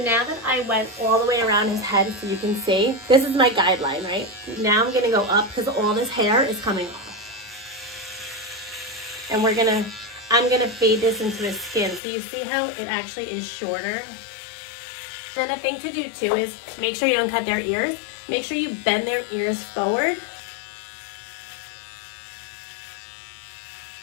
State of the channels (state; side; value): drops out; right; at 12.0 s